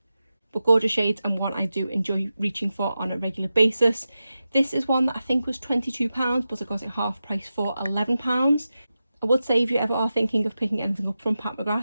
But gorgeous shades, and one I do enjoy reaching for on a regular basis. This is one that I think was £22, but I got it half price for £11. I would say if you ever are thinking of picking anything up from Pat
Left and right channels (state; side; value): inverted; both; correlation -0.92